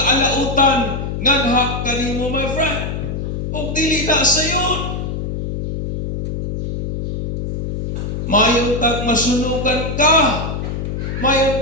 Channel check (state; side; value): noise; left; hum, 4 dB below the sound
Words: nganha kanimo, my friend. O dili na sayon. Mayon tag masunugan ka.